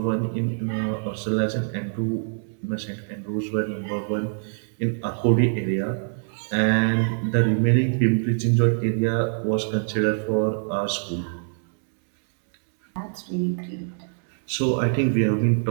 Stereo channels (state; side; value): silent; left; digital silence